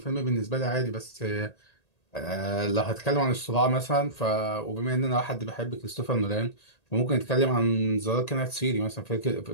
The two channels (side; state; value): right; late; 1.8 ms